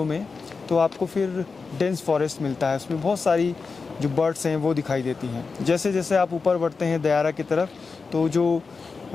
में, तो आपको फिर डेंस फॉरेस्ट मिलता है। उसमें बहुत सारी जो बर्ड्स हैं वो दिखाई देती हैं। जैसे जैसे आप ऊपर बढ़ते हैं दयारा की तरफ, तो जो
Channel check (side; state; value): right; quieter; 4.6 dB